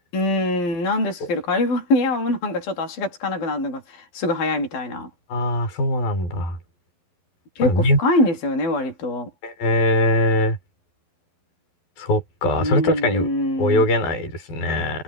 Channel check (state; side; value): late; right; 11 ms